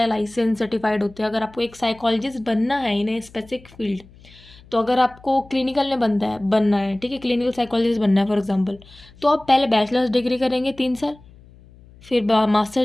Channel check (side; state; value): left; noise; hum, 24 dB below the sound